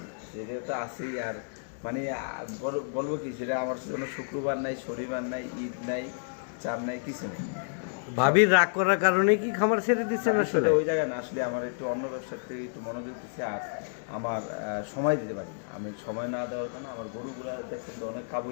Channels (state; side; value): silent; right; digital silence